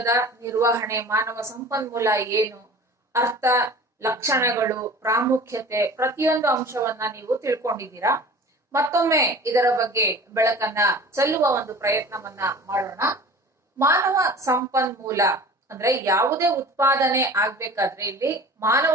ನಿರ್ವಹಣೆ, ಮಾನವ ಸಂಪನ್ಮೂಲ ಏನು, ಅರ್ಥ, ಲಕ್ಷಣಗಳು, ಪ್ರಾಮುಖ್ಯತೆ, ಪ್ರತಿಯೊಂದು ಅಂಶವನ್ನ ನೀವು ತಿಳ್ಕೊಂಡಿದ್ದೀರಾ. ಮತ್ತೊಮ್ಮೆ ಇದರ ಬಗ್ಗೆ ಬೆಳಕನ್ನ ಚೆಲ್ಲುವ ಒಂದು ಪ್ರಯತ್ನವನ್ನ ಮಾಡೋಣ. ಮಾನವ ಸಂಪನ್ಮೂಲ ಅಂದ್ರೆ ಯಾವುದೇ ಉತ್ಪಾದನೆ ಆಗ್ಬೇಕಾದ್ರೆ ಇಲ್ಲಿ ಮಾನವ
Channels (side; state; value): both; normal; correlation 0.41